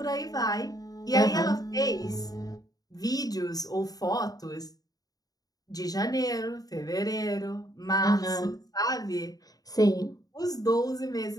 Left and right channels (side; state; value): right; late; 0.18 ms